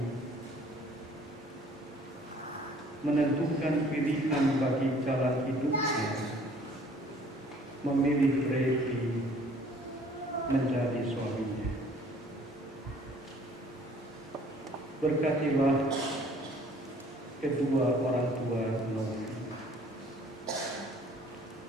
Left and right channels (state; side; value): normal; both; correlation 0.55